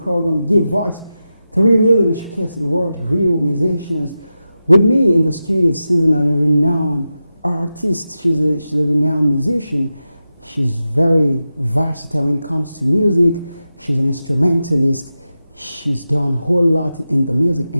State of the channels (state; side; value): inverted; both; correlation -0.92